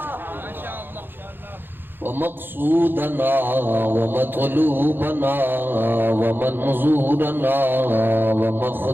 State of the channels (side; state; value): left; late; 0.099 ms